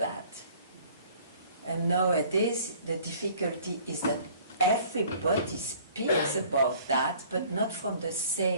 And nowadays, the difficulty is that everybody speaks about that, but not from the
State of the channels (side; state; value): both; inverted; correlation -0.53